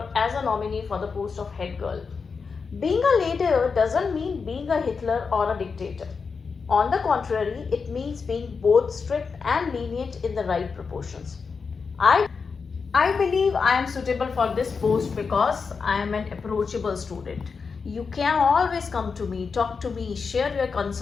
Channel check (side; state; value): right; quieter; 5.2 dB